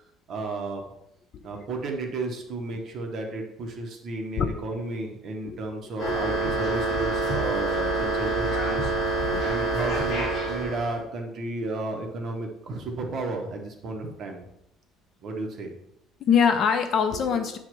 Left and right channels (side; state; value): both; normal; correlation 0.48